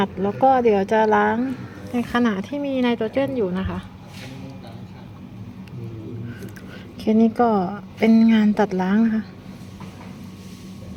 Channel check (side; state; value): both; identical; correlation 1.00